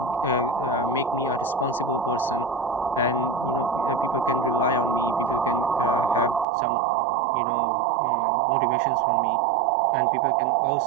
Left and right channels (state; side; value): drops out; left; at 6.5 s